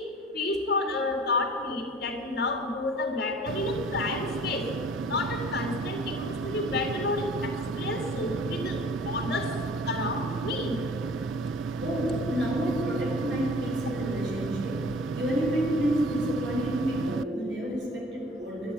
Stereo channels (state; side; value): normal; both; correlation 0.48